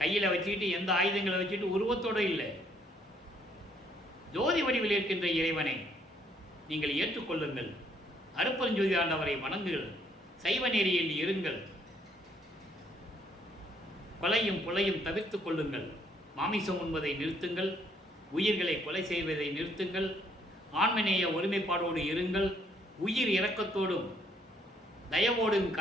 வச்சுக்கிட்டு, எந்த ஆயுதங்களை வச்சுட்டு உருவத்தோடு இல்லை. ஜோதி வடிவில் இருக்கின்ற இறைவனை நீங்கள் ஏற்றுக்கொள்ளுங்கள். அருப்பஞ்சோதி ஆண்டவரை வணங்குங்கள். சைவ நெறியில் இருங்கள். கொலையும் புலையும் தவிர்த்துக் கொள்ளுங்கள். மாமிசம் உண்பதை நிறுத்துங்கள். உயிர்களை கொலை செய்வதை நிறுத்துங்கள். ஆண்மநேய ஒருமைப்பாடோடு இருங்கள். உயிர் இரக்கத்தோடும் தயவோடும்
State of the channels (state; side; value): normal; both; correlation 0.67